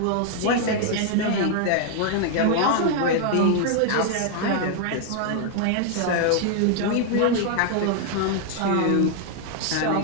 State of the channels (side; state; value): both; different; correlation 0.00